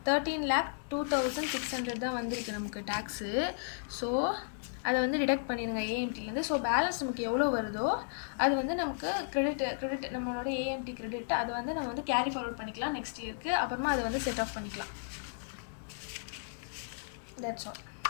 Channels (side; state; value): right; silent; digital silence